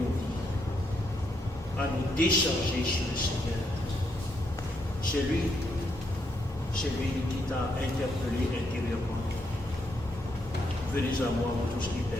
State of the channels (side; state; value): both; normal; correlation 0.77